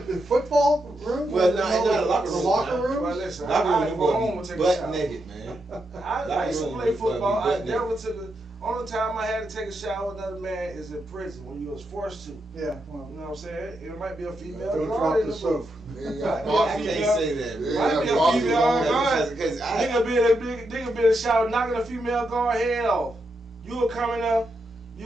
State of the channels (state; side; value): normal; both; correlation 0.83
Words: the football room? Well, no, not a locker The room. locker Nah. room? Well, listen, Locker I room, go home you and take a butt shower. naked, man. I used to Locker play room, football. you I butt never took the only time I had to take a shower with another man is in prison when you was forced to. You Yeah, well, know what I'm saying? It might be a female don't guard drop in the the soap. booth. Oh, I can't say that, man. Might be a Yeah, female yeah. guard. Because Nigga be in the shower knocking a female guard head off. You will come